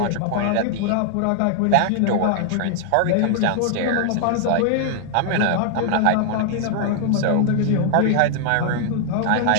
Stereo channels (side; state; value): both; different; correlation 0.00